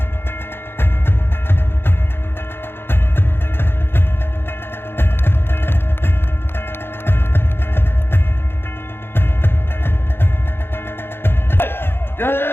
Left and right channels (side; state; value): right; late; 0.11 ms